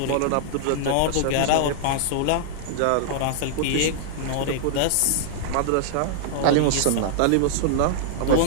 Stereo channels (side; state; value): both; different; correlation -0.01